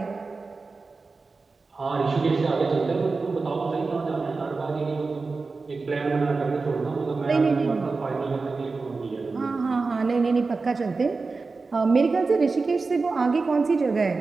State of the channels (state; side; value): quieter; left; 4.1 dB